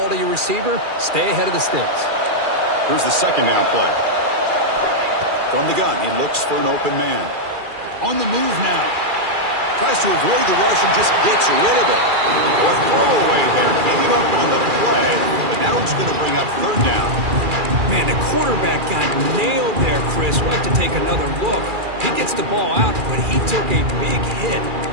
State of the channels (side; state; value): left; late; 2.4 ms